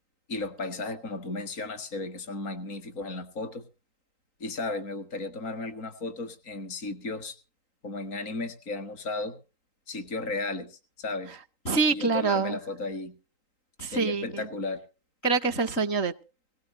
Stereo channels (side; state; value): right; late; 3.9 ms